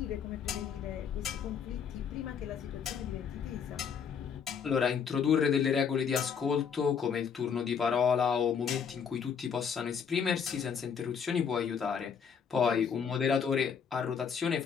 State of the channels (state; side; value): quieter; right; 6.9 dB